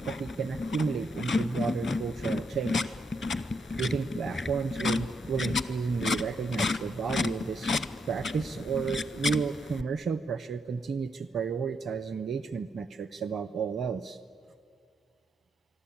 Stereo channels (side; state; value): both; normal; correlation 0.78